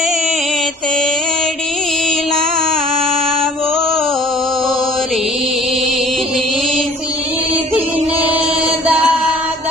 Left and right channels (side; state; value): both; normal; correlation 0.51